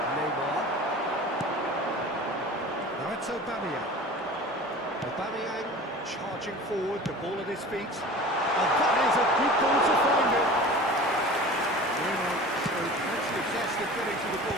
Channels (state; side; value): normal; both; correlation 0.38